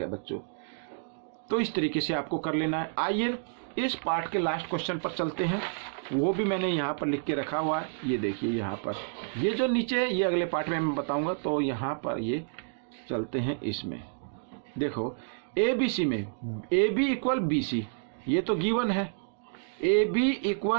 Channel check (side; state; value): left; silent; digital silence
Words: बच्चों। तो इस तरीके से आपको कर लेना है। आइए इस पार्ट के लास्ट क्वेश्चन पर चलते हैं, वो भी मैंने यहाँ पर लिख के रखा हुआ है, ये देखिए यहाँ पर, ये जो नीचे है ये अगले पार्ट में मैं बताऊँगा। तो यहाँ पर ये चलते हैं, इसमें देखो ABC में AB = BC, ये तो गिवन है, AB